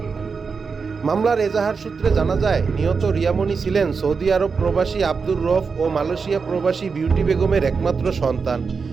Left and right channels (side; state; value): left; quieter; 5.2 dB